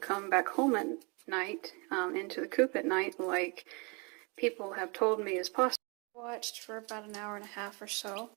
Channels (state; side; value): quieter; left; 31.3 dB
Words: back home at night, into the coop at night, like people have told me is possible? I watched for about an hour and a half or so,